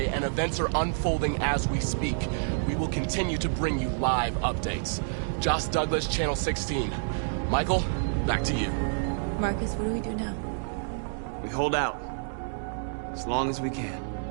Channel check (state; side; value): silent; left; digital silence